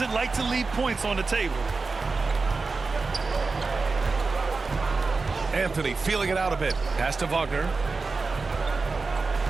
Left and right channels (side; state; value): left; quieter; 4.1 dB